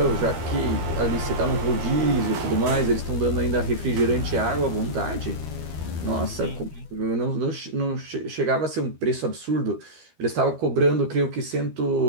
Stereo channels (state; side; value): late; left; 13 ms